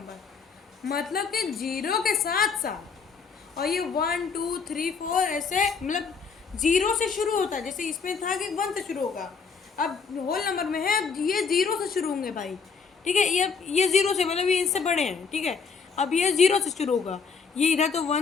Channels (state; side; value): quieter; right; 5.5 dB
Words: मतलब कि 0 के साथ साथ, और ये 1 2 3 4 ऐसे, मतलब 0 से शुरू होता है, जैसे इसमें था कि 1 से शुरू होगा। अब होल नंबर में है, अब ये 0 से शुरू होंगे भाई, ठीक है। ये 0 से, मतलब ये इससे बड़े हैं, ठीक है। अब ये 0 से शुरू होगा, ये इधर तो